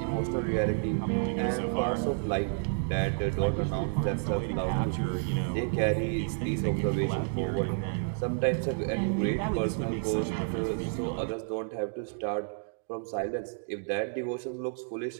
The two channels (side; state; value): left; silent; digital silence